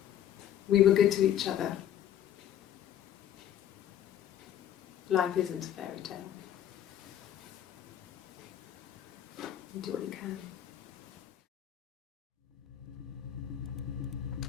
We were good to each other. Life isn't a fairy tale. You do what you can.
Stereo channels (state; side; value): quieter; right; 10.6 dB